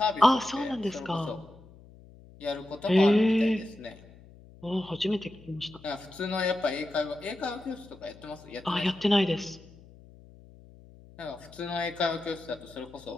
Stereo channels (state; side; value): noise; left; hum, 22 dB below the sound